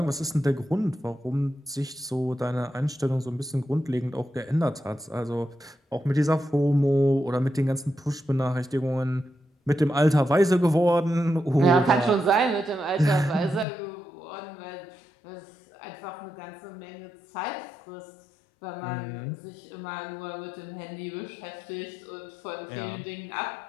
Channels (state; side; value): drops out; right; at 13.7 s